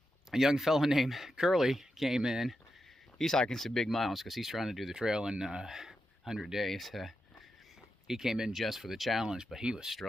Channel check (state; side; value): normal; both; correlation 0.87